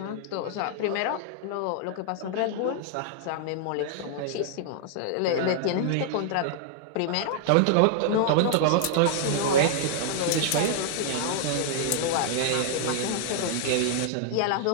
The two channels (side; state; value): both; different; correlation -0.01